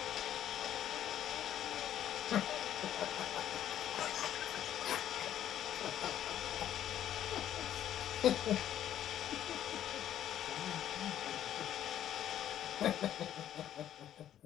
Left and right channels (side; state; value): right; quieter; 11.1 dB